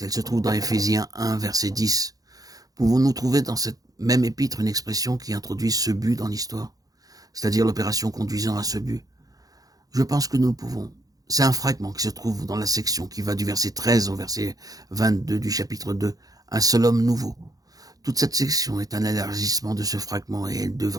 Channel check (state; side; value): late; left; 0.18 ms